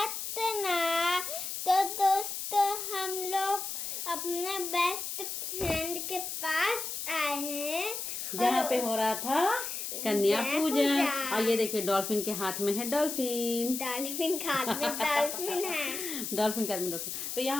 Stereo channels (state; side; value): noise; left; hiss, 5 dB below the sound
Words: तो दोस्तों हम लोग अपने बेस्ट फ्रेंड के पास आए हैं जहाँ पे हो रहा था कन्या पूजन। और ये देखिए डॉल्फिन के हाथ में है डॉल्फिन। डॉल्फिन हाथ में डॉल्फिन है। डॉल्फिन के हाथ में डॉल्फिन। तो